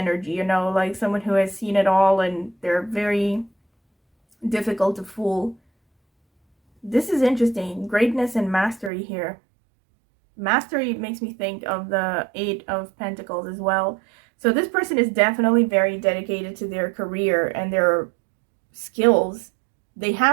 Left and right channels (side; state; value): left; drops out; at 8.9 s